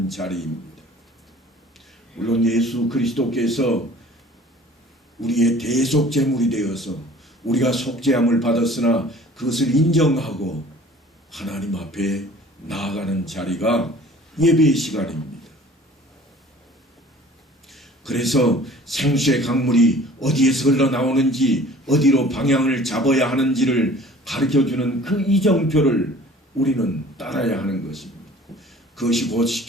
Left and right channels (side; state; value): both; normal; correlation 0.49